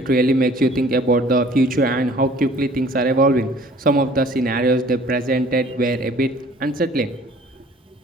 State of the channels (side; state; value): both; normal; correlation 0.53